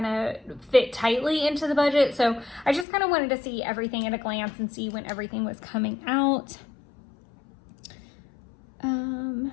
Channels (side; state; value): right; drops out; at 2.9 s